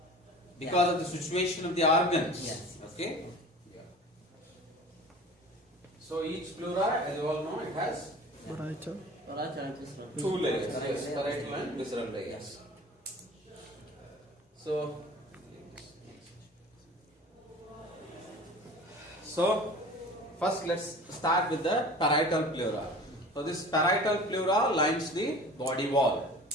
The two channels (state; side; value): normal; both; correlation 0.41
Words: Because of the situation of the organs. Yes. Okay? So each pleura, as you all know, it has Parietal and visceral. two layers. Yes, parietal and visceral layers. So first let's start with the parietal pleura. So this parietal pleura lines the body wall.